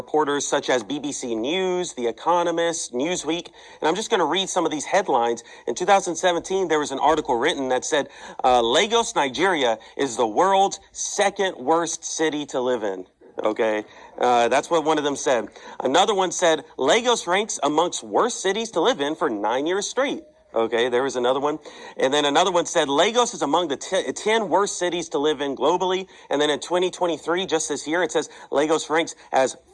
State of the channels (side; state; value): both; identical; correlation 1.00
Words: such as BBC News, The Economist, Newsweek. And I'm just going to read some of these headlines. In 2017, there was an article written that said, Lagos, Nigeria is the world's second worst city to live in. Okay, that's what one of them said. Another one said, Lagos ranks amongst worst cities to live in for 9 years straight. Okay, there was another one. And then another one said, Lagos is among the 10 worst cities to live in globally. And then in 2023, just this year, it says Lagos ranks as